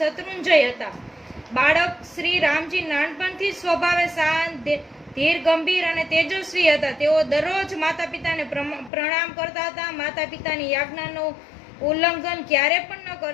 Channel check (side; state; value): right; drops out; at 8.9 s